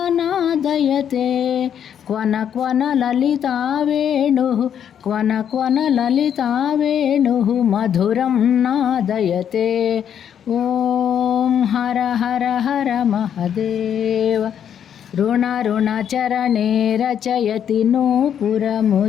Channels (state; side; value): quieter; right; 8.9 dB